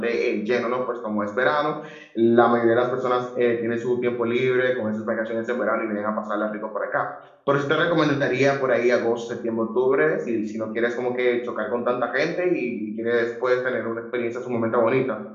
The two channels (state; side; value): identical; both; correlation 1.00